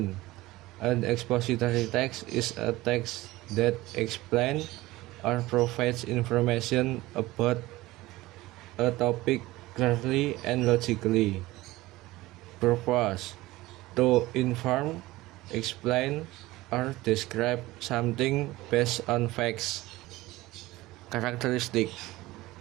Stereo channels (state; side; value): quieter; left; 18.6 dB